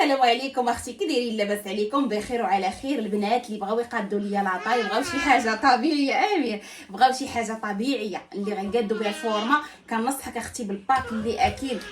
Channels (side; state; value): both; identical; correlation 1.00